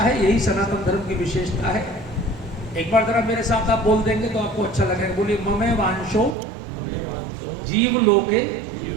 यही सनातन धर्म की विशेषता है। एक बार जरा मेरे साथ आप बोल देंगे तो आपको अच्छा लगेगा। बोलिए, ममे वांशो जीव लोके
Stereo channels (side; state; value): left; drops out; at 6.4 s